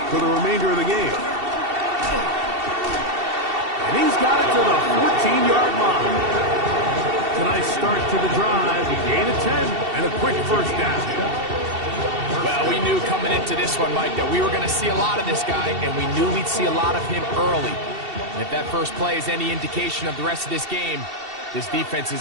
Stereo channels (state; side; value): late; left; 2.7 ms